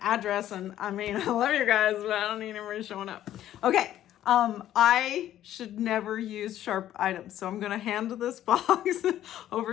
address. And I mean, I love you guys, but I don't need anybody showing up. Okay. I should never use sharp items. So I'm going to hand this box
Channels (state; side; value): quieter; right; 12.2 dB